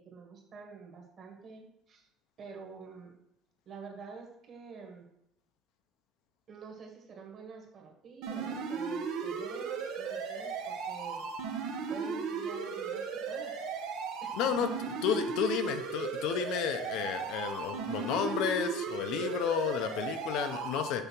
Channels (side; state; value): both; normal; correlation 0.35